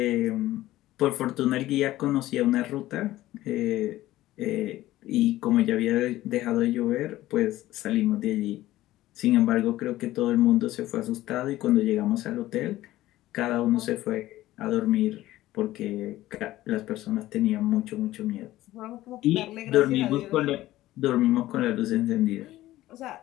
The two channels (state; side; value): quieter; right; 15.7 dB